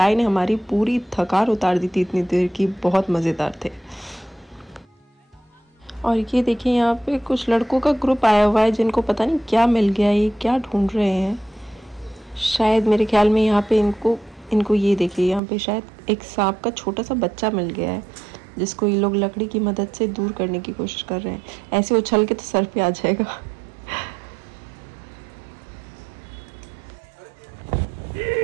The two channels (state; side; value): drops out; left; at 15.4 s